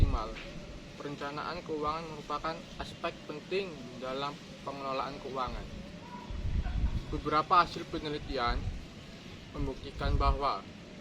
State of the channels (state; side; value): identical; both; correlation 1.00